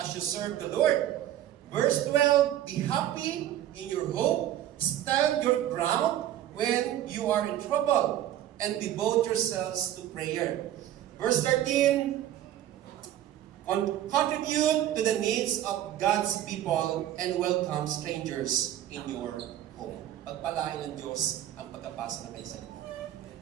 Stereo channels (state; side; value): quieter; left; 12.2 dB